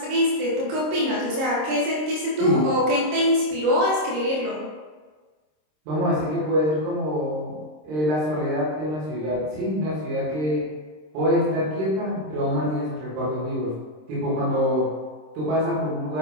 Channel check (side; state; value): left; late; 26 ms